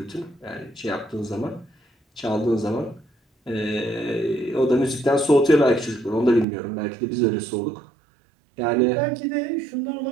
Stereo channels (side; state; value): left; drops out; at 6.5 s